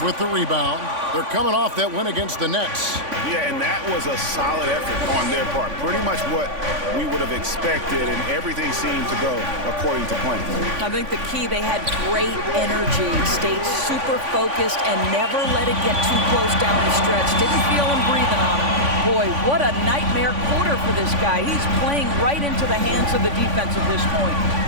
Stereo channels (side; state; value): left; late; 3.5 ms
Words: with the rebound. They're coming off that win against the Nets. Yeah, and that was a solid effort on their part. Pretty much what we would have expected, and everything seemed to go according to plan. I think the key, they had great energy, stayed super focused, and never let it get too close down the stretch. Didn't feel him breathing on him. Boy, what a nightmare quarter for this guy. He's playing right into the hands of the defense at this point.